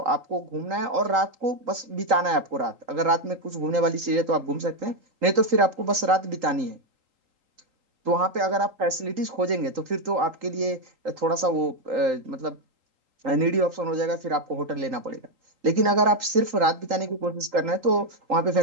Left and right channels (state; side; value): late; left; 3.8 ms